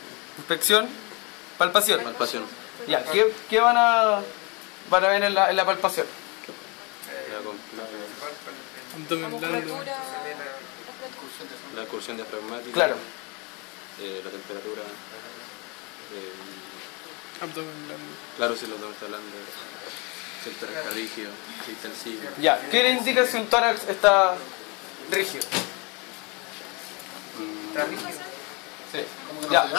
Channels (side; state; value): right; quieter; 29.5 dB